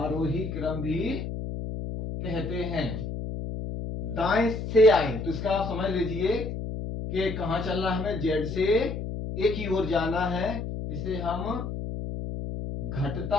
क्रम भी कहते हैं। दाएं से आए तो इसका आप समझ लीजिए कि कहां चलना है, हमें जेड से ए की ओर जाना है। इसे हम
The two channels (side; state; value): left; noise; hum, 5 dB below the sound